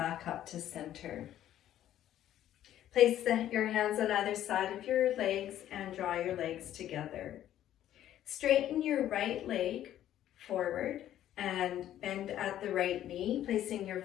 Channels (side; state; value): right; quieter; 12.0 dB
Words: up to center. Place your hands on either side of your legs and draw your legs together. Straighten your right leg forward and bend at the right knee, placing your